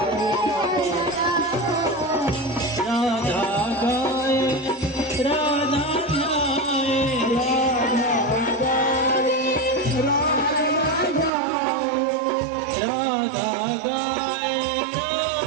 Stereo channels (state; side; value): drops out; left; at 11.3 s